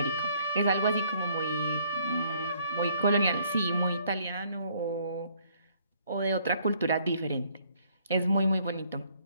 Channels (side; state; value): both; inverted; correlation -0.64